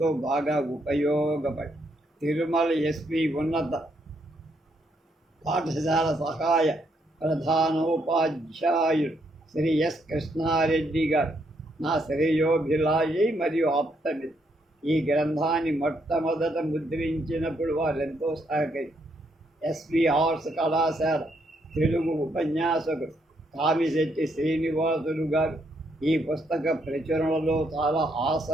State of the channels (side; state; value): both; normal; correlation 0.75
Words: బాగా ఉపయోగపడి తిరుమల ఎస్వి ఉన్నత పాఠశాల సహాయ ప్రధానోపాధ్యాయుడు శ్రీ ఎస్ కృష్ణారెడ్డి గారు నా శ్రేయోభిలాషి మరియు ఆప్తమిత్రుడు. ఈ గ్రంథాన్ని మొట్టమొదట ముద్రించినప్పుడు వారెంతో సహకరి ఎస్వి ఆర్ట్స్ కళాశాల తెలుగు ఉపన్యాసకుడు కామిశెట్టి శ్రీనివాసులు గారు ఈ పుస్తక ప్రచురణలో చాలా